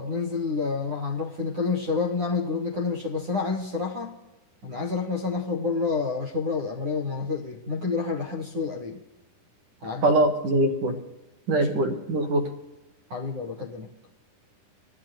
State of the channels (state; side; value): late; left; 9.8 ms